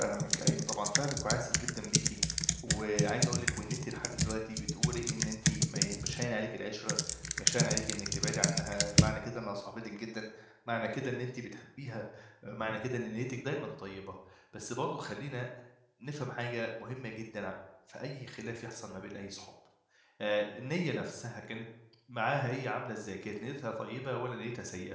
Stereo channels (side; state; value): both; identical; correlation 1.00